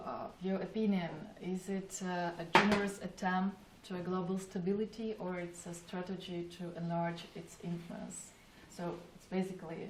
your opinion, is it a generous attempt to a global stability, or it's a strategy to enlarge its influence? So, it's basically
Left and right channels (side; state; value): both; identical; correlation 1.00